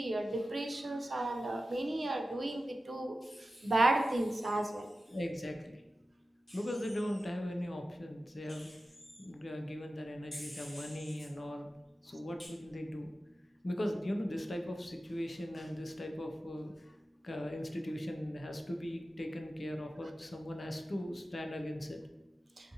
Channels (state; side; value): normal; both; correlation 0.94